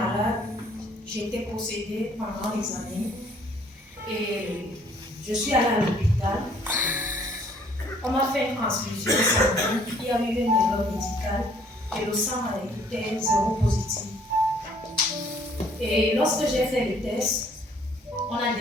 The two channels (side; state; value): both; normal; correlation 0.61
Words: j'étais possédée pendant les années et je suis allée à l'hôpital. On m'a fait une transfusion sanguine, il y a eu une erreur médicale et le sang était 0 positif. Et lorsque j'ai fait le test, on a